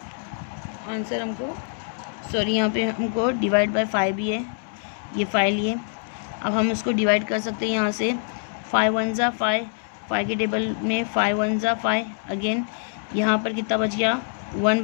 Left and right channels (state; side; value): silent; right; 62 dB below the other